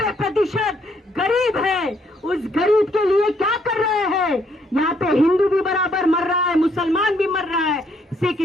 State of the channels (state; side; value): normal; both; correlation 0.70